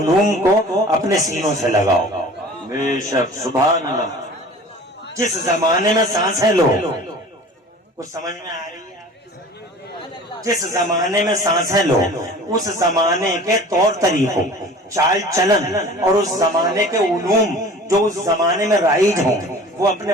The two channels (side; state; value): both; normal; correlation 0.43